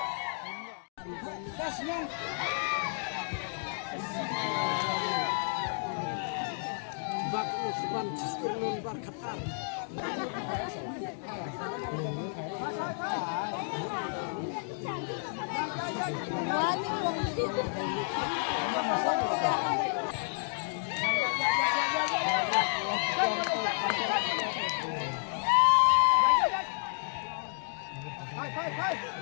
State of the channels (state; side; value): silent; right; digital silence